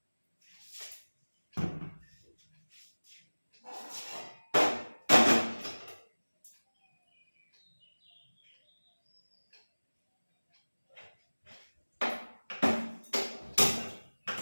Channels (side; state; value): both; inverted; correlation -1.00